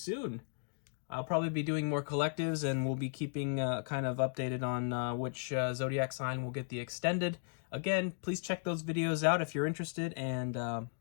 I'll probably be doing more collectives, and we'll be keeping kind of updated on which zodiac sign will get the extended. Again, please check those videos out if you're interested. And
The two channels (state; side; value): silent; right; digital silence